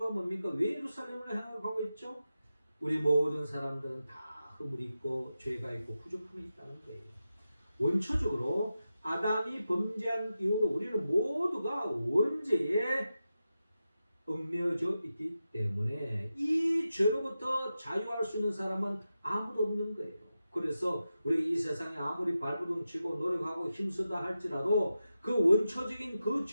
뭡니까? 왜 예루살렘을 향하여 가고 있죠? 우리 모든 사람들은 다 허물이 있고 죄가 있고 부족함이 있다는 거예요. 원초적으로 아담이 범죄한 이후로 우리는 모두가 원죄에 얽매여져 있기 때문에 이 죄로부터 자유할 수 있는 사람은 아무도 없는 거예요. 그래서 우리가 이 세상에 아무리 발버둥치고 노력하고 힘쓰다 할지라도 그 원초적인 그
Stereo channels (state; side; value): inverted; both; correlation -0.91